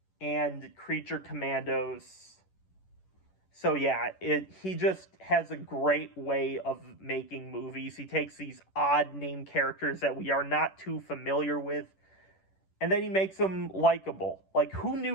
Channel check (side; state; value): right; late; 10 ms